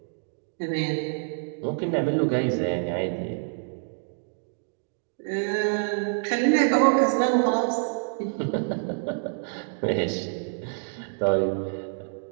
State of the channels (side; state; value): left; silent; digital silence